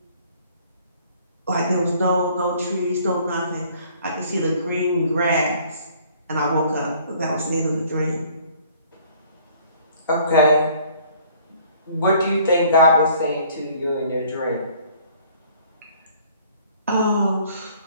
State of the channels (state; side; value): inverted; both; correlation -0.57